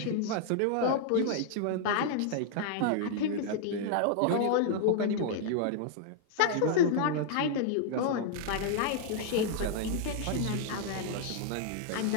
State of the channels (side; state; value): both; different; correlation -0.01